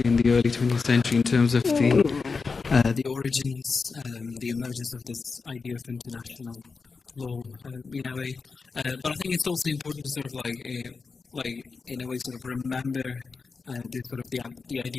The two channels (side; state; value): right; quieter; 4.6 dB